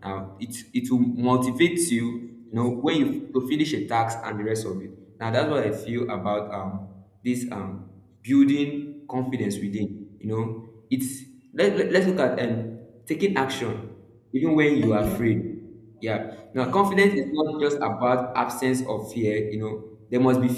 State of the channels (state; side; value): identical; both; correlation 1.00